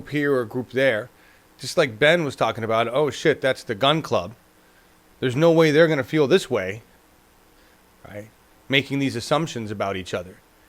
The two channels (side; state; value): both; identical; correlation 1.00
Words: here or a group there. Just like Ben was talking about, oh shit, that's the gun club. There's no way they're going to feel this way, right? Making these assumptions about each other.